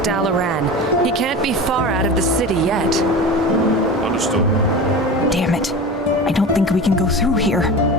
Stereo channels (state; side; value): normal; both; correlation 0.31